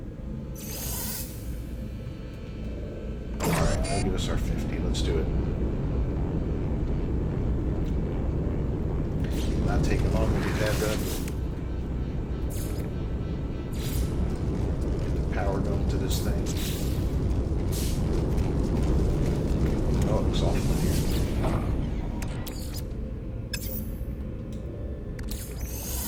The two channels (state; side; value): identical; both; correlation 1.00